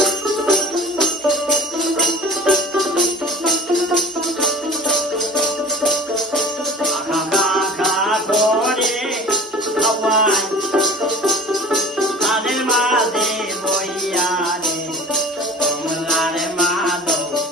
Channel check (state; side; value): normal; both; correlation 0.43